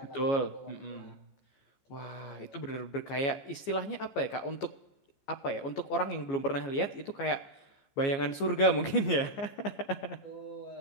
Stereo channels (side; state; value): right; late; 15 ms